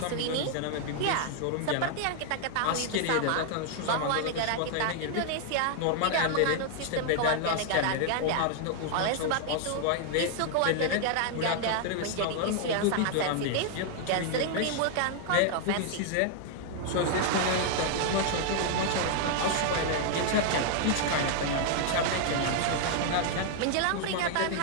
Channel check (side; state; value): both; different; correlation 0.00